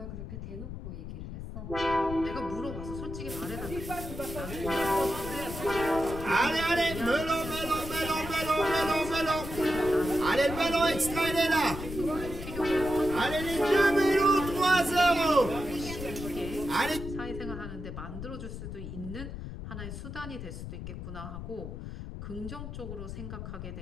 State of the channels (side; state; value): left; noise; rumble, 8 dB below the sound